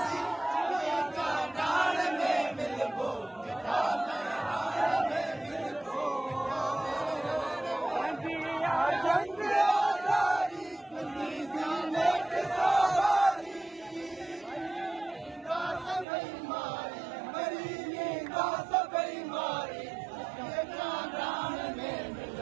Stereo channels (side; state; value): left; drops out; at 16.1 s